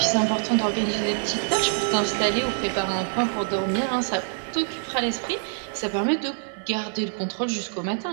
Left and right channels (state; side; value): silent; left; digital silence